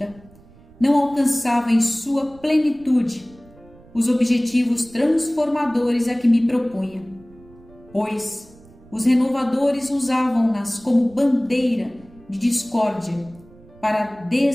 não alcançavam em sua plenitude os objetivos transformadores a que me propunha, pois os renovadores usavam-nas como bandeira de discórdia para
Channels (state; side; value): noise; right; rumble, 25 dB below the sound